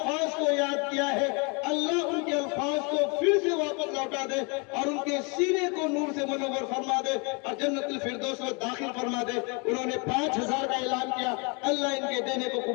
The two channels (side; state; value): right; quieter; 32.2 dB